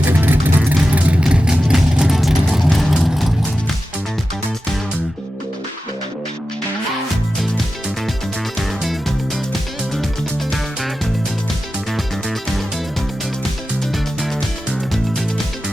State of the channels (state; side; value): normal; both; correlation 0.92